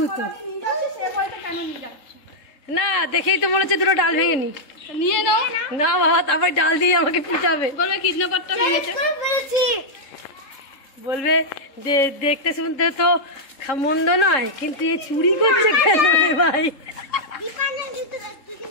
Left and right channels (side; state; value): right; late; 3.7 ms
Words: না দেখেই তো মনে হচ্ছে দুটো ডাল ভেঙে নি। নিয়ে নাও না বাবা, তারপর ডাল দিয়ে আমাকে পিটাবে, বলবে কিডন্যাপারটা ভেঙেছে। বলবে যে দেখতে শুনতে তো মন্দ নয়, কিন্তু এ চুরি করছে কেন রে ভাই?